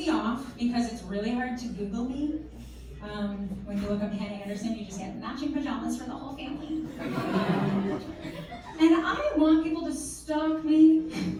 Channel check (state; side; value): identical; both; correlation 1.00